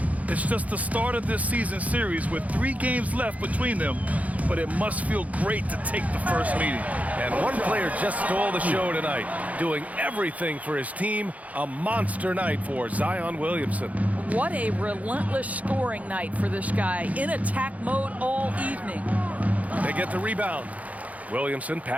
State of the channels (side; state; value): left; late; 0.071 ms